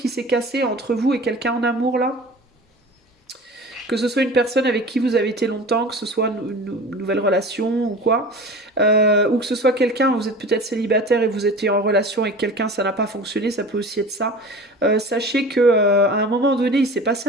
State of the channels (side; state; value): both; normal; correlation 0.38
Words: s'est cassé entre vous et quelqu'un en amour, là, que ce soit une personne avec qui vous avez été longtemps, que ce soit une nouvelle relation ou quoi, ou que ce soit quelqu'un, vous êtes peut-être célibataire et vous étiez en relation avec quelqu'un, ça n'a pas fonctionné, ça peut aussi être ça. Sachez que à un moment donné, il s'est passé